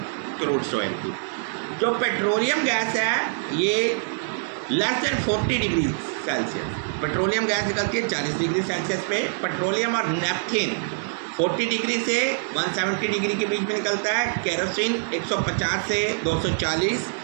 क्रूड ऑयल की। जो पेट्रोलियम गैस है ये less than 40 degree Celsius, petroleum gas निकलती है 40 डिग्री सेल्सियस पे। पेट्रोलियम और नेपथीन 40 डिग्री से 170 डिग्री के बीच में निकलता है। केरोसिन 150 से 240,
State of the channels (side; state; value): left; silent; digital silence